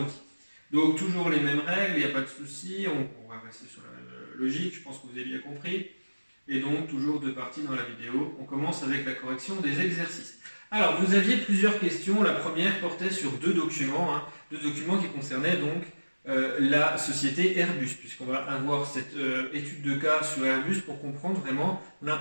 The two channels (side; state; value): both; inverted; correlation -1.00